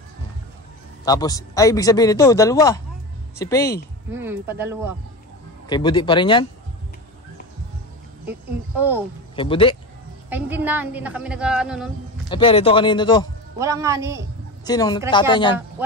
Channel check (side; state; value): both; normal; correlation 0.26